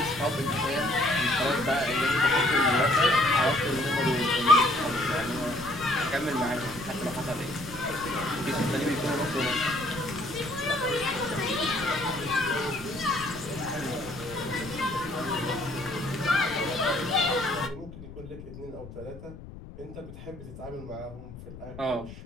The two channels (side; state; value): left; noise; rumble, 14 dB below the sound